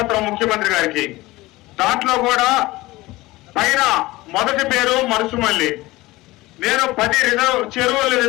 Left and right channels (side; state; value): right; quieter; 19.7 dB